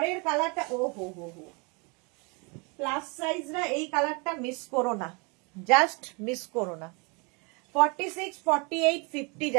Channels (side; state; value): left; quieter; 31.2 dB